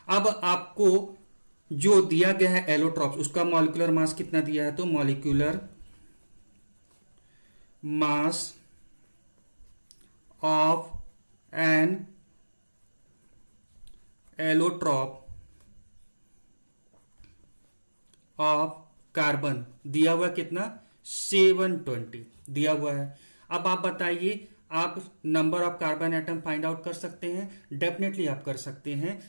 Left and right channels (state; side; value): inverted; both; correlation -1.00